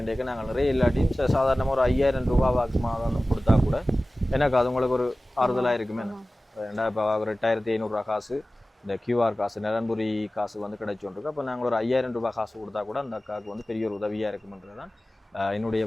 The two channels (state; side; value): normal; both; correlation 0.97